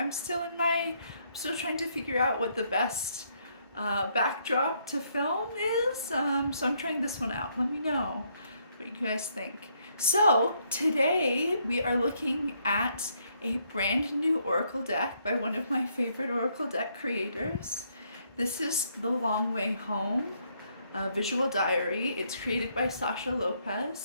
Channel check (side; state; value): both; inverted; correlation -0.72